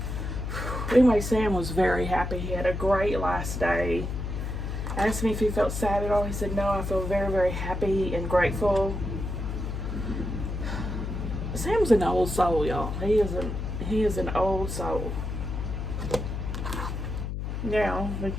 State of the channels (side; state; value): left; noise; hum, 4 dB below the sound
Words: Anyway, Sam was very happy. He had a great last day. Asked me if he felt sad at all. He said, no, I feel very, very happy and grateful. Sam's an old soul, y'all. He is an old soul. Now we